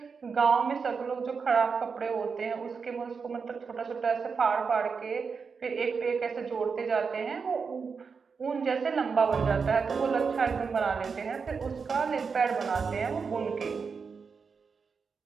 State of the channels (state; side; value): quieter; left; 5.4 dB